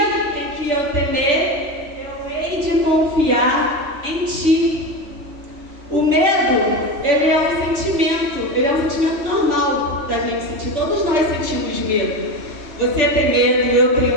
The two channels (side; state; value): left; late; 3.4 ms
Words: em que eu temer, eu hei de confiar em Ti. O medo, ele é um sentimento normal da gente sentir. Todos nós sentimos medo. Você tem medo, eu tenho